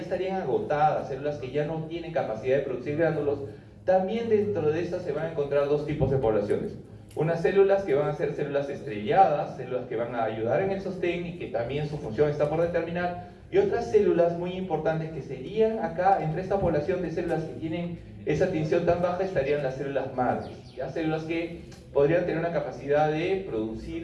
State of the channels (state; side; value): identical; both; correlation 1.00